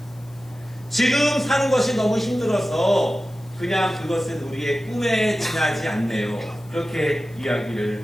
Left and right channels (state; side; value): noise; left; hiss, 28 dB below the sound